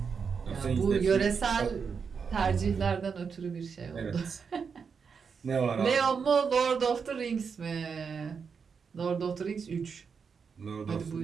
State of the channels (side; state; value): left; quieter; 5.9 dB